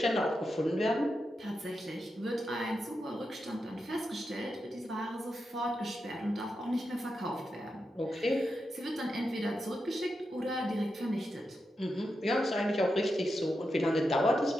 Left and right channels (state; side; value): normal; both; correlation 0.87